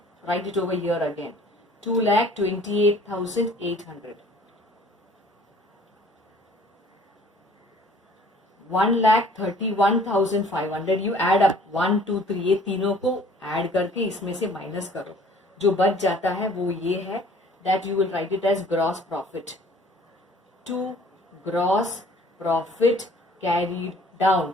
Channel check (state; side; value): normal; both; correlation 0.53